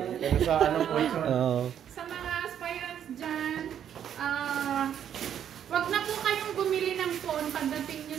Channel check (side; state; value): left; quieter; 9.4 dB